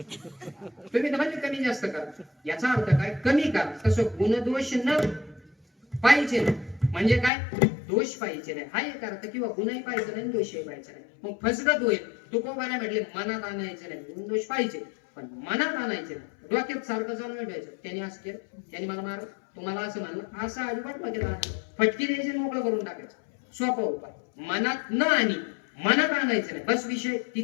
तुम्ही तर म्हणजे कमी जास्त करा याचा अर्थ काय कमी करा तसं गुणदोष न पाहिजे म्हणजे काय दोष पाहिजे नाही हा एक अर्थ किंवा गुणही पाहिजे नाही दोषही पाहिजे नाही मग फसगत होईल तू कोणाला म्हटले मनात आणायचे नाही गुण दोष पाहिजे पण मनात आणायचे नाही डोक्यात सारखं जाऊन ठेवायचं त्यांनी असं केलं त्यांनी मला मार तुम्हाला असं म्हणलं असं अजिबात डोक्यात फटकी द्यायची मोकळं करून टाकायचं सोपा उपाय मनात न आणि मनात आणायचं नाही बस विषय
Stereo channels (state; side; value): drops out; right; at 7.3 s